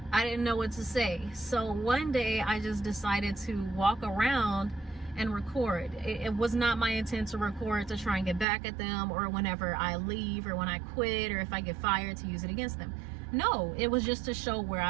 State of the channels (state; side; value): drops out; left; at 8.5 s